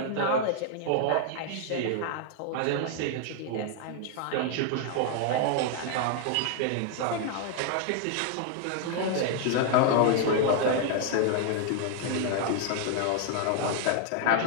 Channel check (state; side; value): different; both; correlation 0.00